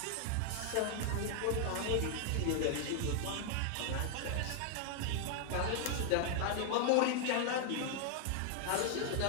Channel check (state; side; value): different; both; correlation 0.00